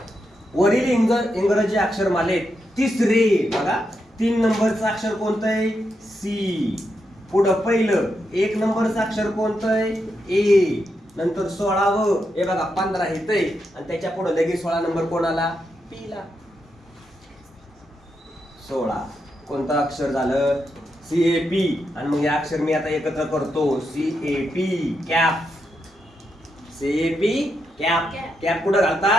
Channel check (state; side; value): normal; both; correlation 0.84